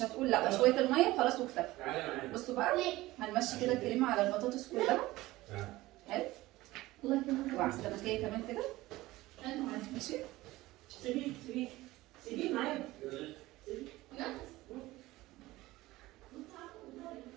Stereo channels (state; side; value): quieter; left; 18.2 dB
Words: هتقول لا شويه الميه خلاص وكفايه. بصوا بقى هنمشي كده الكريمه على البطاطس كلها. حلو. وعلى السمكيه كمان كده. ماشي. سيبيه معايا.